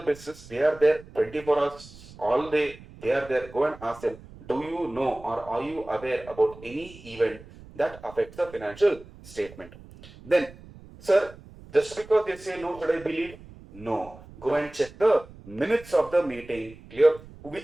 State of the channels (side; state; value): right; noise; rumble, 20 dB below the sound